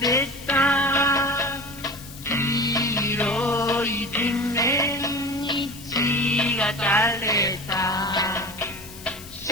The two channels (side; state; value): left; noise; hiss, 17 dB below the sound